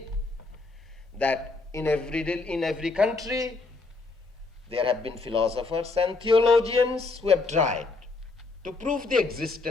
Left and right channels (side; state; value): right; quieter; 3.7 dB